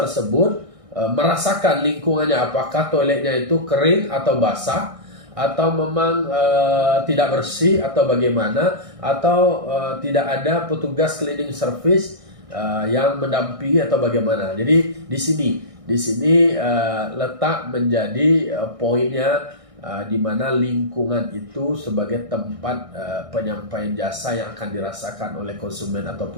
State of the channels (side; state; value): left; late; 1.6 ms